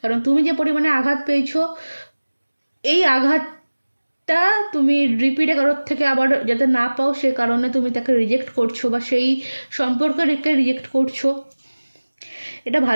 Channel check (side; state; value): both; inverted; correlation -1.00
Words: কারণ তুমি যে পরিমাণে আঘাত পেয়েছো, এই আঘাতটা তুমি রিপিটে কারোর থেকে আবার যাতে না পাও সে কারণে তুমি তাকে রিজেক্ট করছো বা সেই সম্পর্ককে রিজেক্ট করছো। এটা